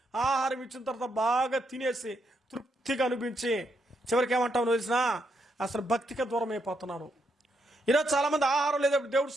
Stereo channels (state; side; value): normal; both; correlation 0.79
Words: ఆహారం ఇచ్చిన తర్వాత బాగా తినేసి తృప్తిగా అనిపించి చివరికి ఏమంటావు తెలిసినా అసలు భక్తికి దూరం అయిపోతున్నారు. ఈరోజు చాలామంది ఆహారం లేదప్పుడు దేవుడు